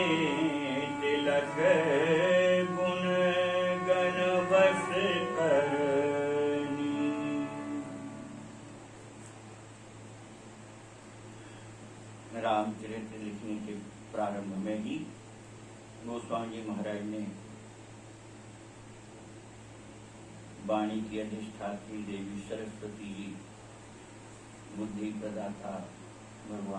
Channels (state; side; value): identical; both; correlation 1.00